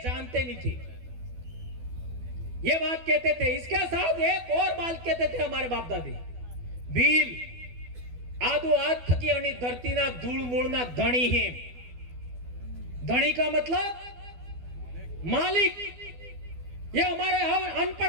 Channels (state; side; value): late; left; 12 ms